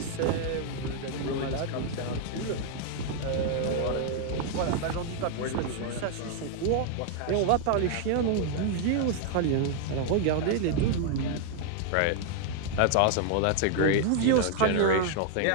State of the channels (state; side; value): different; both; correlation 0.00